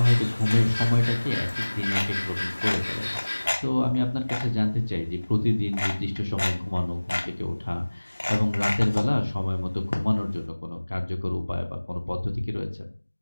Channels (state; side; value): inverted; both; correlation -1.00